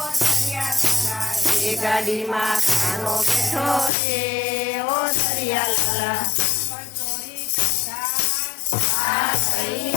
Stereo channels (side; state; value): right; drops out; at 3.9 s